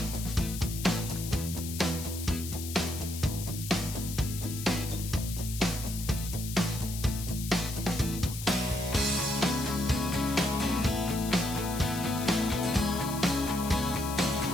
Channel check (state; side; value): noise; left; hiss, 9 dB below the sound